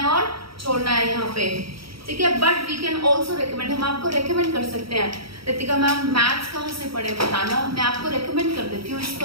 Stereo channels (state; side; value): late; left; 0.75 ms